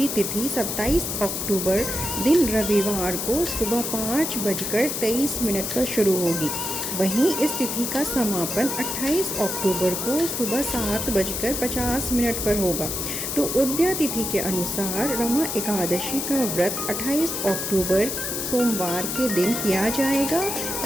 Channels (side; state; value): left; noise; hiss, 3 dB below the sound